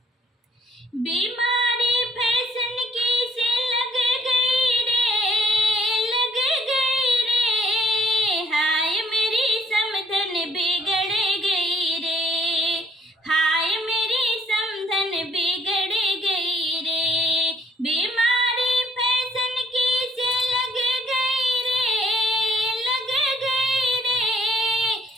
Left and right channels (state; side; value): normal; both; correlation 0.65